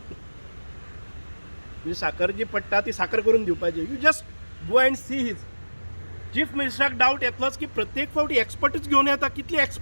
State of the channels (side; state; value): both; inverted; correlation -1.00